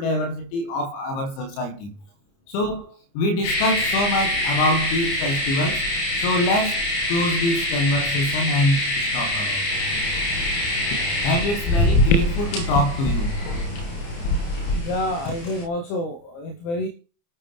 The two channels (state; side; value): late; right; 29 ms